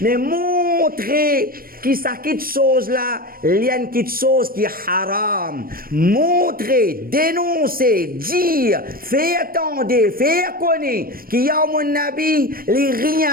montrer que ça quitte chose là, il y a une quitte chose qui est haram. Montrer, dénoncer, dire, faire attendre, faire connaître qu'il y a mon Nabi, les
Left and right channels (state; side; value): late; left; 0.42 ms